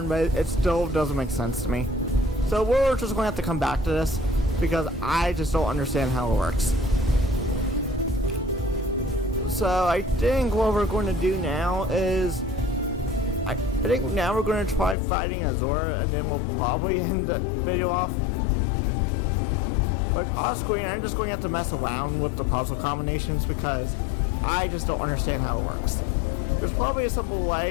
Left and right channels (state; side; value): drops out; right; at 15.0 s